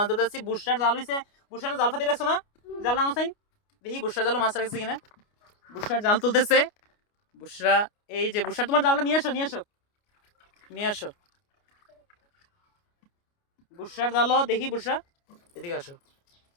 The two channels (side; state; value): right; late; 29 ms